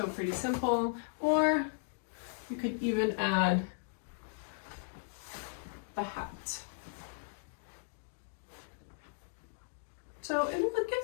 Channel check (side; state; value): right; silent; digital silence